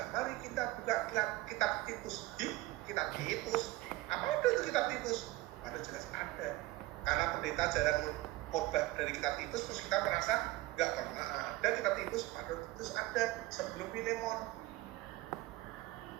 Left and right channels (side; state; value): left; quieter; 18.4 dB